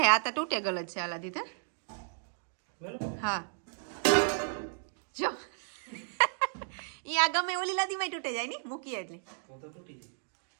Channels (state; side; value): silent; left; digital silence